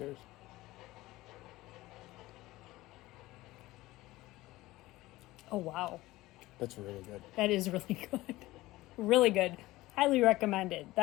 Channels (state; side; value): quieter; right; 18.3 dB